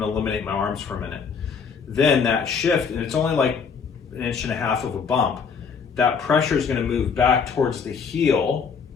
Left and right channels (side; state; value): right; quieter; 6.0 dB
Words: to eliminate my arms for a minute. Then that shift, and it's only like 1.5 inches of a bump, that pressure is going to move back towards the heel.